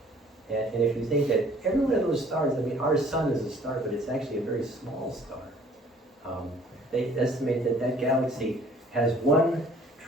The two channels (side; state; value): both; normal; correlation 0.55